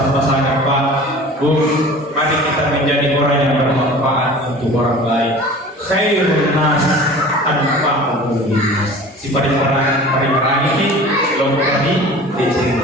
Pak, Bu, mari kita menjadi orang yang bermanfaat untuk orang lain. Khairun nas anfa'uhum linnas. Si paling ini kelompok ini di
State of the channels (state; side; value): normal; both; correlation 0.41